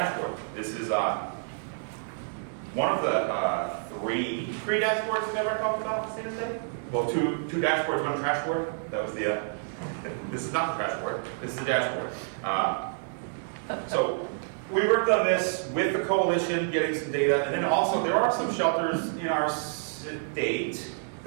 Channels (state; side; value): silent; left; 59 dB below the other